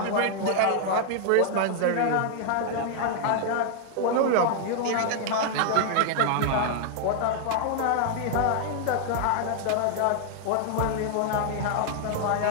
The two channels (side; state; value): both; different; correlation 0.00